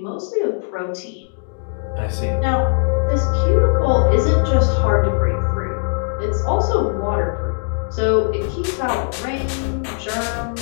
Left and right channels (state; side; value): silent; right; digital silence